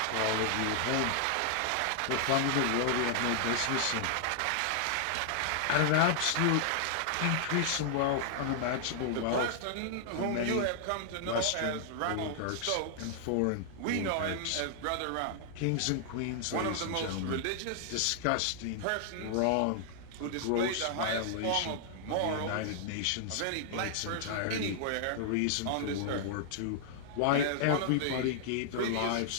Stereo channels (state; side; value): different; both; correlation -0.01